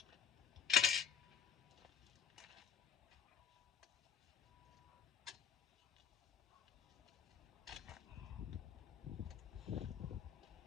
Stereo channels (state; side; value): quieter; right; 7.6 dB